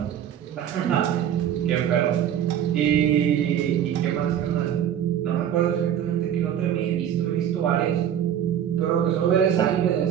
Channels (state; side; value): quieter; left; 9.8 dB